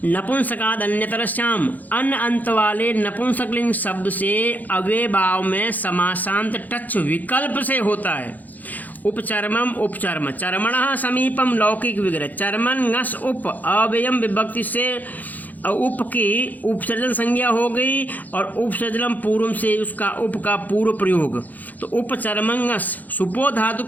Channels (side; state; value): right; late; 0.082 ms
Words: नपुंसकाद अन्यतरस्याम, अन अंत वाले नपुंसकलिंग शब्द से अव्यभाव में समासांत टच विकल्प से होता है। उपचर्मम उपचर्म, चर्मणः समीपम लौकिक विग्रह, चर्मन ngस उप अव्ययम विभक्ति से उप की उपसर्जन संज्ञा हो गई और उपसर्जनम पूर्व से उसका उप का पूर्व प्रयोग, तो उपचर्मंगस सुपो धातु